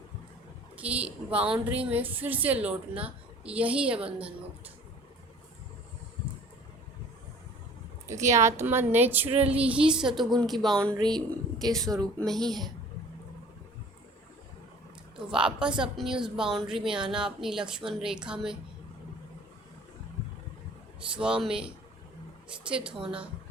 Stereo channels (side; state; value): both; normal; correlation 0.49